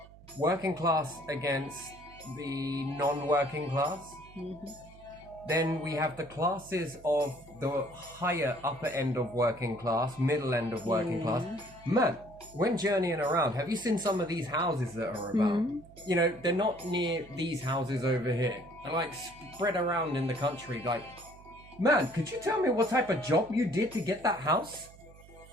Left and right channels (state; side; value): noise; right; hum, 22 dB below the sound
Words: working class against the non-working class. Then we have the classes of the higher upper end of working class, middle end of working class. Man, when journeying around, have you seen some of these houses that are about? You know, they're not near these houses over here. They're like spread around in the country. Like, man, could you tell me what type of job you did to get that house?